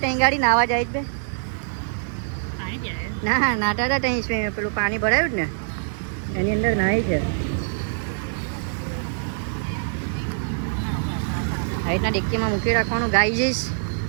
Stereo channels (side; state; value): left; silent; digital silence